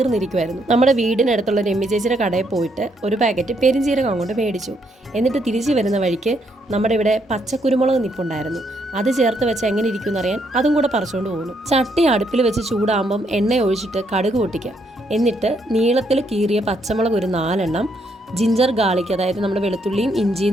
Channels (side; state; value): both; normal; correlation 0.74